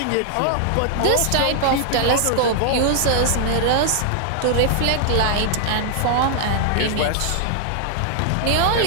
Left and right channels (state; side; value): different; both; correlation 0.00